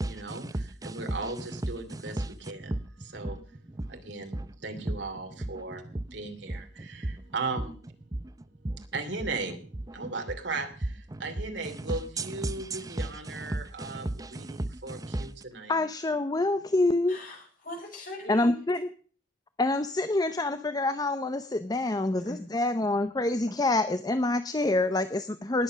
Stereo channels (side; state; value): both; normal; correlation 0.59